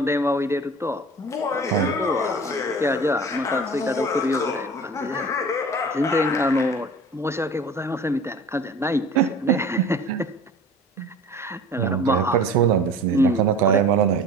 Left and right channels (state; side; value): normal; both; correlation 0.41